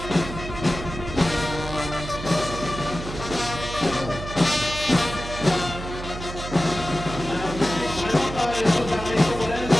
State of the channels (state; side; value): noise; right; hum, 9 dB below the sound